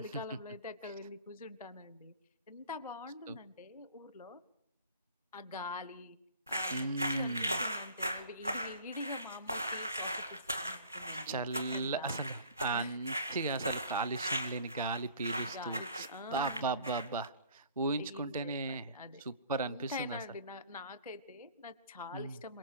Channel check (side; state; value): both; inverted; correlation -0.50